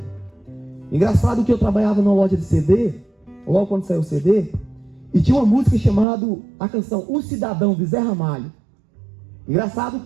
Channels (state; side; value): drops out; left; at 6.1 s